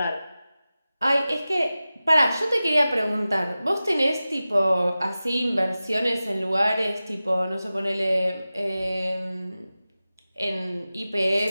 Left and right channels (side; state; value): both; inverted; correlation -0.95